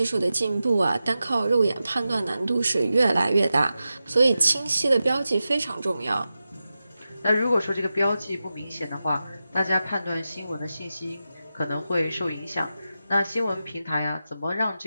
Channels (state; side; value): inverted; both; correlation -0.92